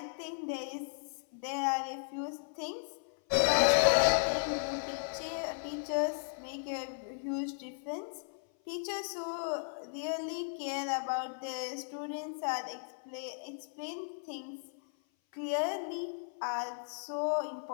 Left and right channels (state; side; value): silent; right; 54 dB below the other